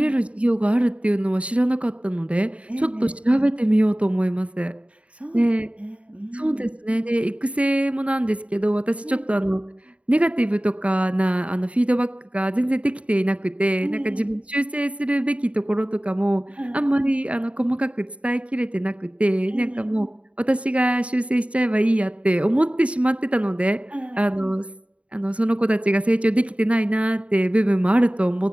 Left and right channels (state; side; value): late; left; 0.063 ms